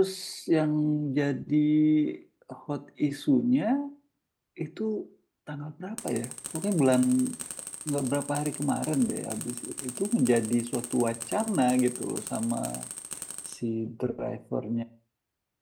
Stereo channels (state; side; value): identical; both; correlation 1.00